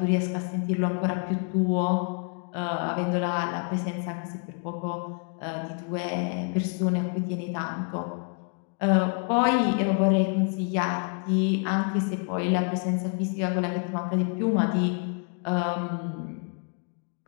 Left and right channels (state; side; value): quieter; right; 40.0 dB